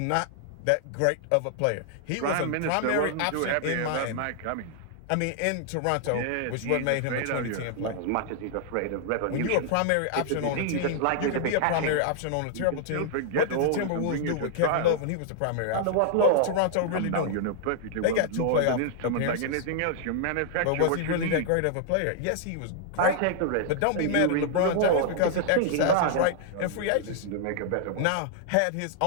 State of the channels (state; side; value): different; both; correlation -0.01